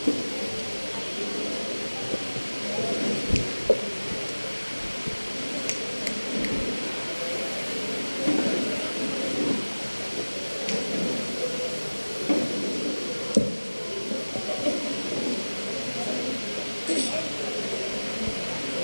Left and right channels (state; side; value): inverted; both; correlation -1.00